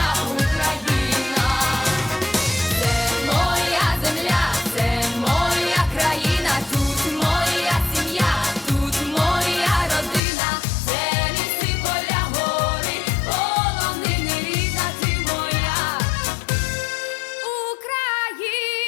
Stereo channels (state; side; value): drops out; right; at 10.2 s